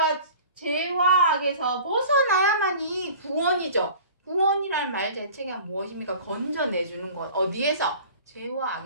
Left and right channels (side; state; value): both; inverted; correlation -0.43